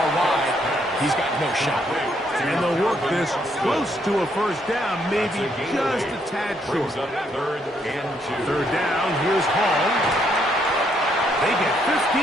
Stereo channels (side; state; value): both; normal; correlation 0.72